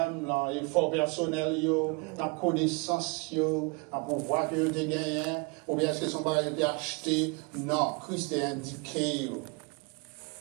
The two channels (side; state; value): left; quieter; 30.5 dB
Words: l'effort personnel, la connaissance, le pouvoir que vous avez gagné, ou bien est-ce que son bagage a été acheté? Non, Christ est indiqué.